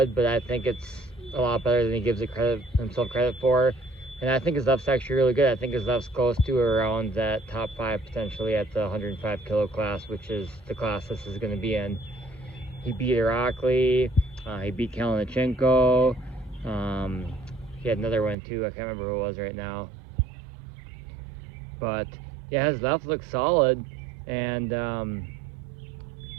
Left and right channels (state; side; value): drops out; left; at 18.4 s